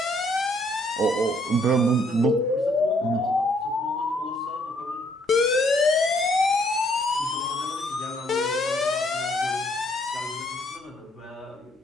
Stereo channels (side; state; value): both; normal; correlation 0.67